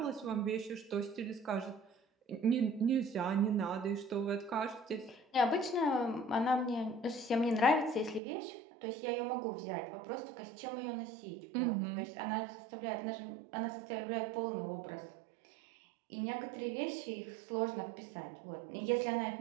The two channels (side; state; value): left; drops out; at 8.2 s